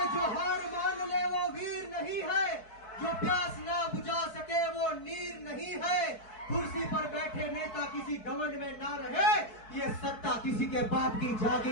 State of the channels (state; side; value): late; right; 4.6 ms